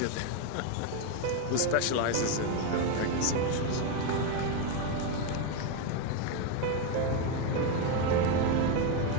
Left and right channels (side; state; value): both; different; correlation 0.02